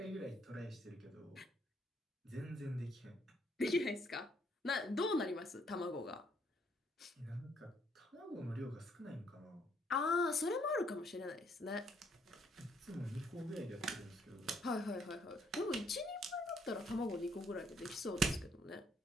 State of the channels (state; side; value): normal; both; correlation 0.68